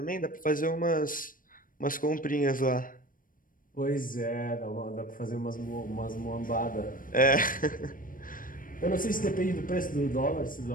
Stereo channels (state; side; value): late; right; 0.40 ms